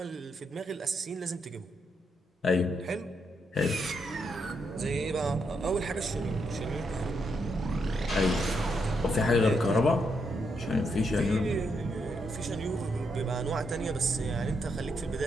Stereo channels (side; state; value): both; normal; correlation 0.79